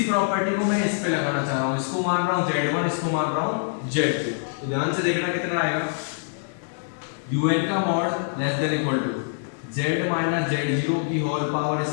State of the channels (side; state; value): right; silent; 58 dB below the other